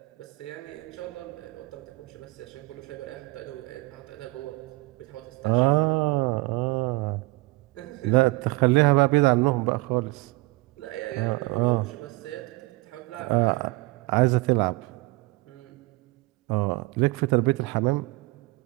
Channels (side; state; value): left; quieter; 22.4 dB